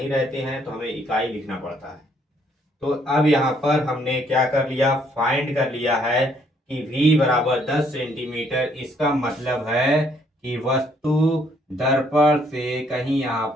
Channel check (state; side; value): normal; both; correlation 0.67